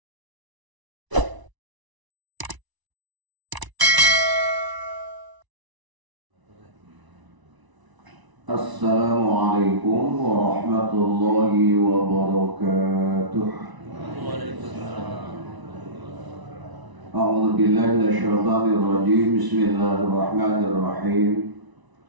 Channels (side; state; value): left; late; 1.0 ms